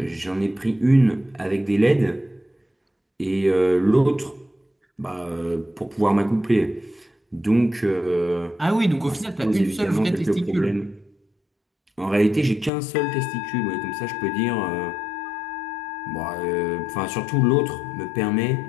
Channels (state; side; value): drops out; right; at 12.7 s